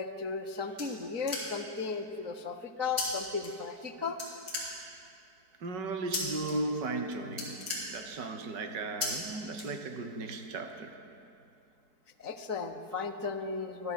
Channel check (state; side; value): late; left; 4.6 ms